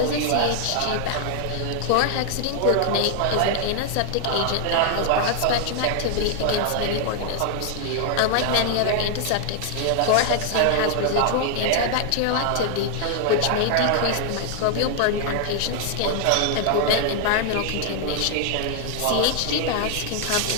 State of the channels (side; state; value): both; different; correlation 0.00